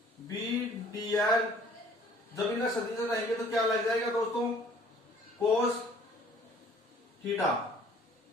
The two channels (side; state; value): both; normal; correlation 0.54